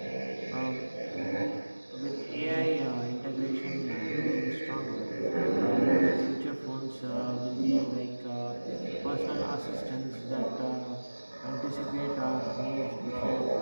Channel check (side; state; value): both; inverted; correlation -1.00